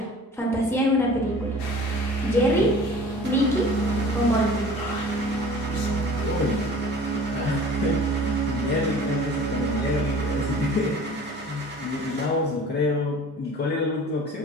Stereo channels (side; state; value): both; normal; correlation 0.45